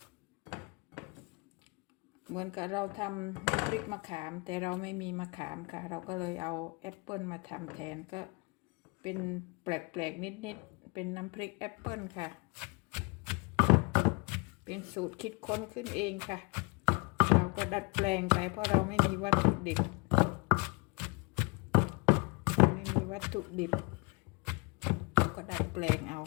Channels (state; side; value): quieter; right; 28.8 dB